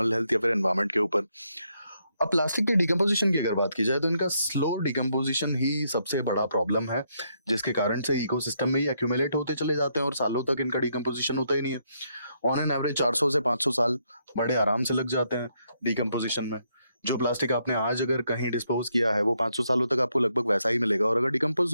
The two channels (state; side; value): inverted; both; correlation -0.76